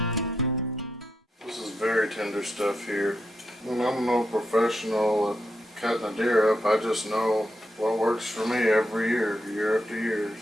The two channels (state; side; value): normal; both; correlation 0.83